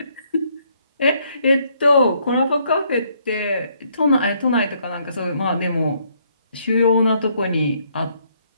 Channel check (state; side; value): inverted; both; correlation -0.69